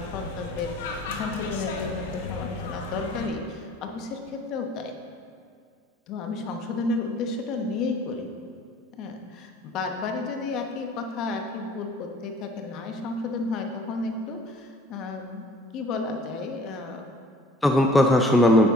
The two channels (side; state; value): both; normal; correlation 0.52